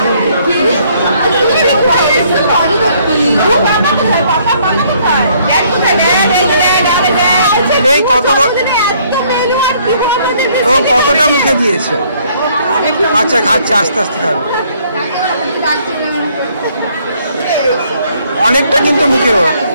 এই কতটা মুখে দিয়েছে? আচ্ছা খাচ্ছে, আস্তে আস্তে খাবে। অনেকটা কিন্তু মুখে,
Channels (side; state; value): both; inverted; correlation -0.64